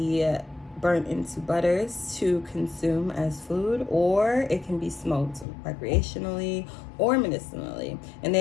burnt into butters to consume as food, or it can be smoked recreationally or medicinally. And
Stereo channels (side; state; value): right; drops out; at 5.5 s